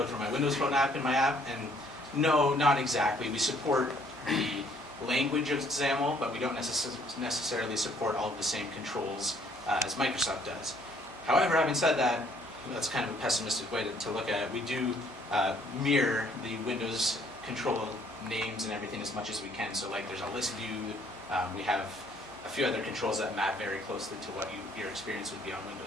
for my Windows Phone app in my app? And no, not exactly. We support the language of XAML, but we don't necessarily support all of the same controls as Microsoft does. However, having said that, that's kind of a pessimistic way to look at it. We do mirror the Windows control names and everything as much as we can. So like there's a list view, we have a few other controls that map very closely to what your experience would be on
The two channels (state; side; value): normal; both; correlation 0.63